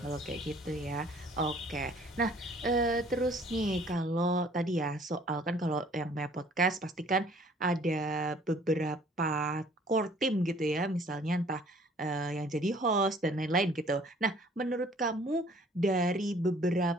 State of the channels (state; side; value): normal; both; correlation 0.56